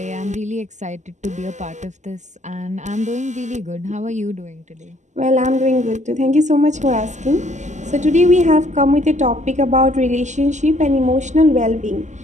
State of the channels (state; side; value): late; left; 0.34 ms